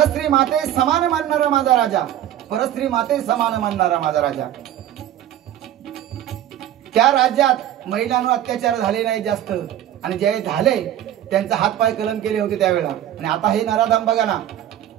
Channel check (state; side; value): quieter; left; 11.7 dB